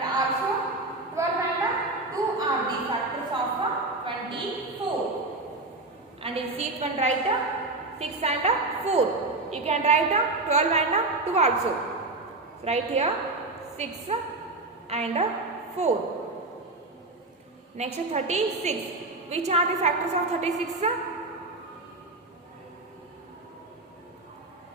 also 12 and 2 are the factors of 24. And in sheet 1 write 6 and 4. You can write 12 and 2 also. So write here 6 and 4. Next 36. Which are the factors of 36?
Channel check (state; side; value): quieter; left; 3.0 dB